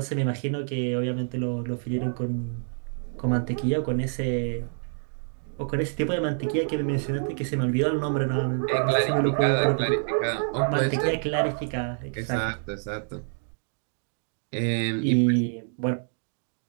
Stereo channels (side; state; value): left; silent; digital silence